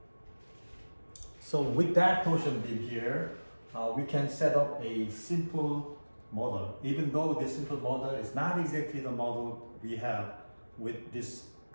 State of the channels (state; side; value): inverted; both; correlation -1.00